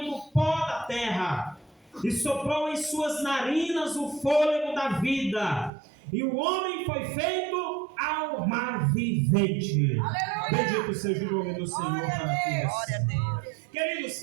do pó da terra, e soprou em suas narinas o fôlego da vida, e o homem foi feito alma vivente. Aleluia. Bendito seja o nome do Senhor para todos. Glória a Deus. Queridos,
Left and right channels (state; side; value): drops out; left; at 5.7 s